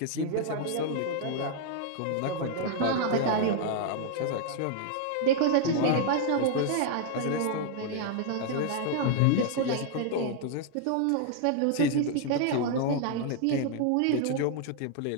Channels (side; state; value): both; different; correlation 0.00